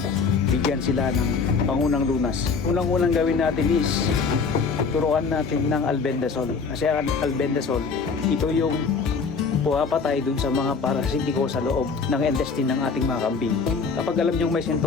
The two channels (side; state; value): right; quieter; 5.0 dB